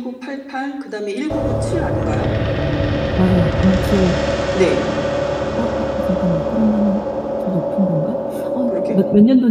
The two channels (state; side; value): identical; both; correlation 1.00